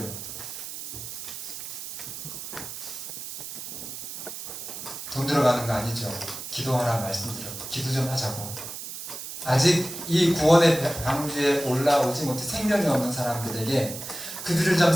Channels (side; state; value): right; noise; hiss, 8 dB below the sound